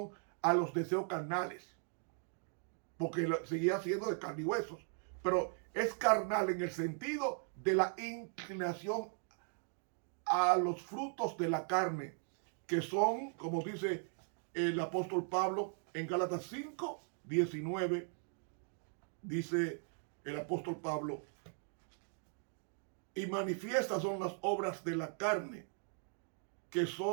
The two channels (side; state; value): left; silent; 52 dB below the other